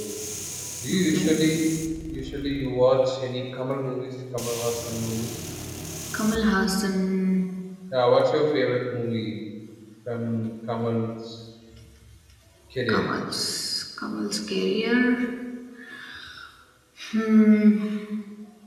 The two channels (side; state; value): both; identical; correlation 1.00